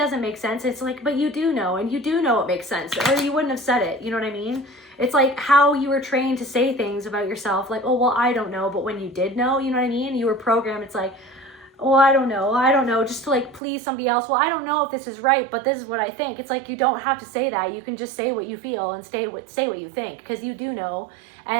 make sense. It's like, but you do know, and you do know it makes sense, or you wouldn't have said it. You know what I mean? It's like how you were trained to say things about yourself, like, oh, well, I don't know, but when you did know, you know what I mean? You were programmed. It's like, well, I don't know, just to like please somebody else. Well, I don't know if this is right, but this is what I think. It's like, you don't have to say that. You can just say what you feel and say what you think, because you do know,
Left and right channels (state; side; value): drops out; left; at 13.6 s